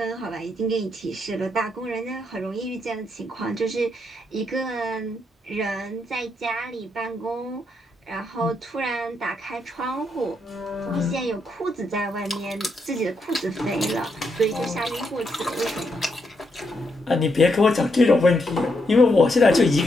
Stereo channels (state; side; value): normal; both; correlation 0.79